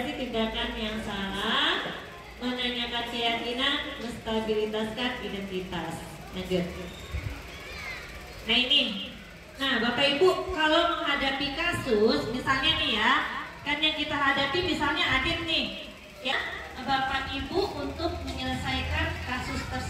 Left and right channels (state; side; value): identical; both; correlation 1.00